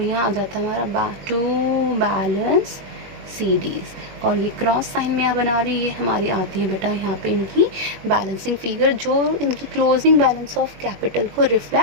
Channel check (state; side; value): late; left; 21 ms